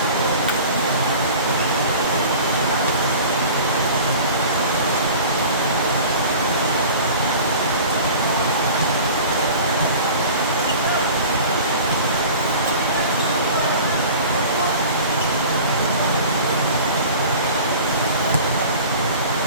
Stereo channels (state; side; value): inverted; both; correlation -0.40